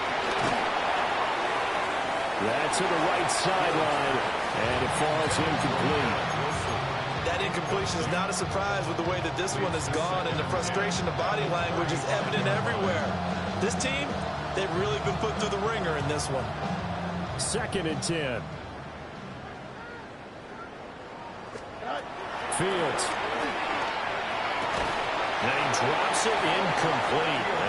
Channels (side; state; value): both; identical; correlation 1.00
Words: That's to the right sideline, and it falls incomplete. That incompletion is not a surprise with the way that this one has gone, and the frustration of body language is evident everywhere. This team, they've really been put through the ringer in this one. 2nd and 10. Fields. And he drops it incomplete.